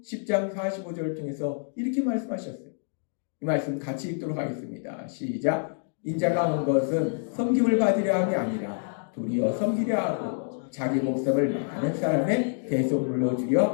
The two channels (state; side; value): silent; right; digital silence